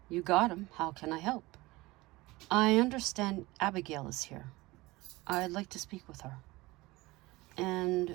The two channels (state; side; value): quieter; left; 20.8 dB